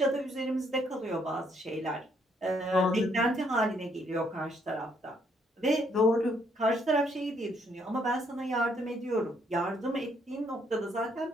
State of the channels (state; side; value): normal; both; correlation 0.70